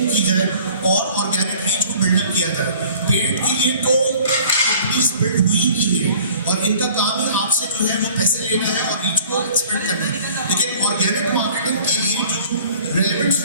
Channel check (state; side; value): inverted; both; correlation -0.51